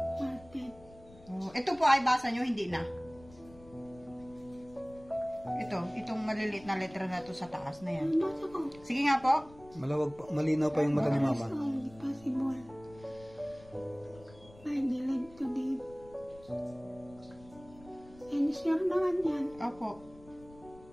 Market. Ito po ay basa nyo, hindi na. Itong maliliit na letra na to sa taas na yan. Basa ko. Sige nga po. Malawag pa, malinaw pa yung mata ni Mama. Possible. I believe to live. And sure naman yan. Opo.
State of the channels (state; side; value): noise; left; rumble, 22 dB below the sound